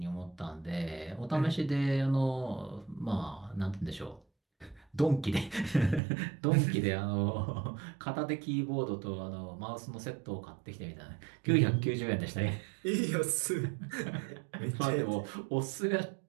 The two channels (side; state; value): left; drops out; at 6.0 s